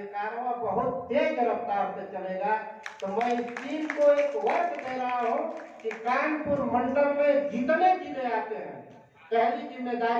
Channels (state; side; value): identical; both; correlation 1.00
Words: कारवां बहुत तेज रफ्तार से चलेगा। तो मैं इस टीम को एक वर्क दे रहा हूँ कि कानपुर मंडल में जितने जिले आते हैं, पहली